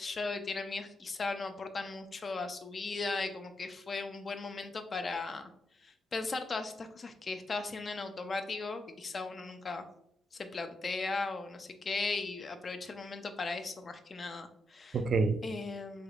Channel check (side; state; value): both; normal; correlation 0.82